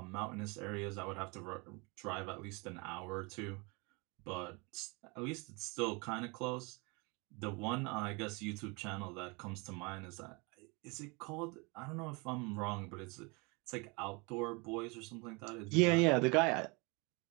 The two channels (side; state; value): left; quieter; 28.9 dB